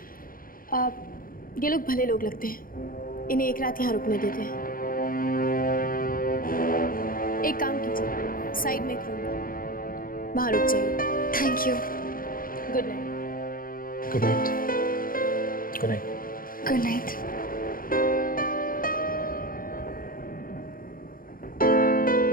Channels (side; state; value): right; late; 0.41 ms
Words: ये लोग भले लोग लगते हैं, इन्हें एक रात यहाँ रुकने देते हैं। एक काम कीजिए, साइड में एक रूम है, वहाँ रुक जाइए। Thank you. Good night. Good night. Good night. Good night.